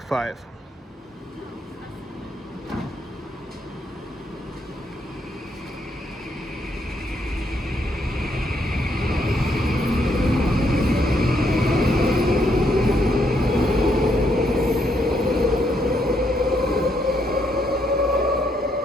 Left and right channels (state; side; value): normal; both; correlation 0.74